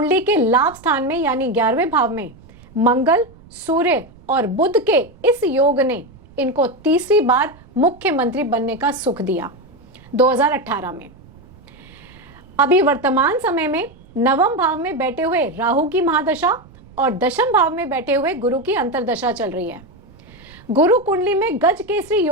के लाभ स्थान में यानी 11वें भाव में मंगल, सूर्य और बुध के इस योग ने इनको तीसरी बार मुख्यमंत्री बनने का सुख दिया 2018 में। अभी वर्तमान समय में नवम भाव में बैठे हुए राहु की महादशा और दशम भाव में बैठे हुए गुरु की अंतर्दशा चल रही है। गुरु कुंडली में गज केसरी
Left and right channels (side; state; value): right; noise; rumble, 24 dB below the sound